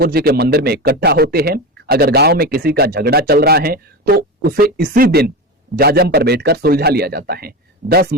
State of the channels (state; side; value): normal; both; correlation 0.21